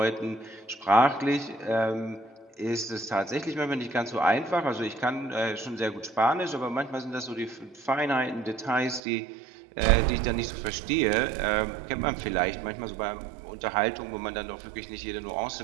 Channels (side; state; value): left; drops out; at 9.0 s